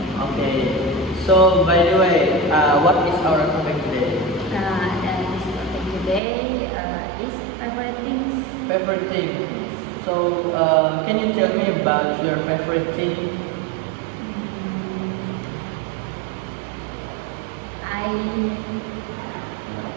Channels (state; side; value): drops out; left; at 6.2 s